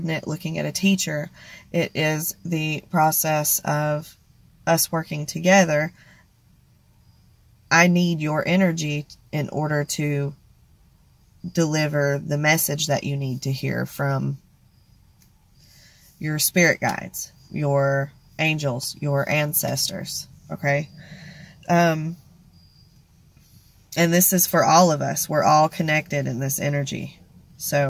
looking at a teacher. It is the process of us working together. I need your energy in order to deliver the message that you need to hear from your spirit guides, your angels, your ancestors. Okay? And this is for all of us. We're all connected in this energy.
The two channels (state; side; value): identical; both; correlation 1.00